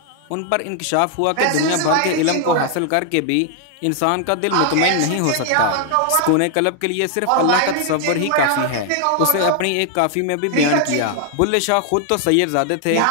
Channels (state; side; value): different; both; correlation 0.00